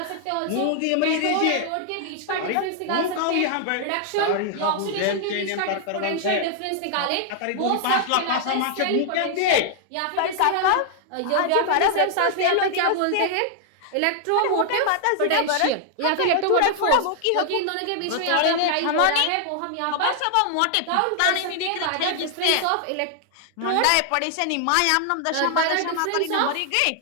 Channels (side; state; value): both; different; correlation -0.01